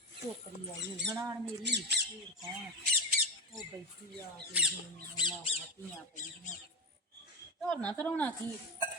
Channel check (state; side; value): normal; both; correlation 0.16